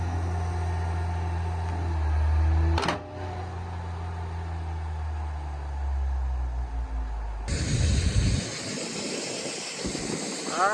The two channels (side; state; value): both; identical; correlation 1.00